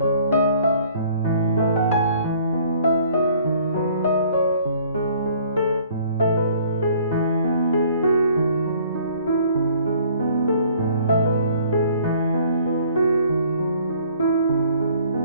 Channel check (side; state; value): both; inverted; correlation -0.57